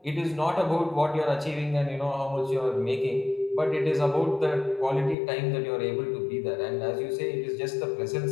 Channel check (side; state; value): right; drops out; at 5.2 s